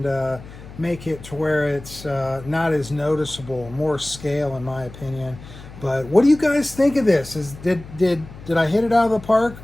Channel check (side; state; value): left; noise; hum, 17 dB below the sound